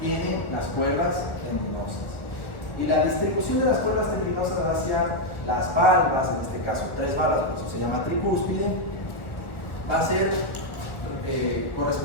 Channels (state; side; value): late; right; 1.1 ms